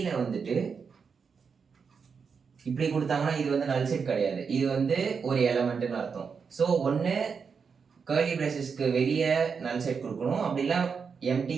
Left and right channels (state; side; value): quieter; left; 5.8 dB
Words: வந்துட்டு இப்படி கொடுத்தாங்கன்னா இது வந்து நல் செட் கிடையாது, இது வந்து ஒரு எலமெண்ட்னு அர்த்தம். ஸோ ஒன்று கர்லி பிரேசஸ்க்கு வெளியே நல் செட் கொடுக்கணும், அப்படிலாம் எம்டி